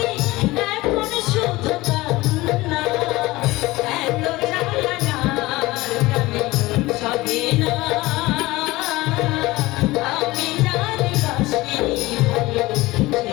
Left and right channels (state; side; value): quieter; right; 19.7 dB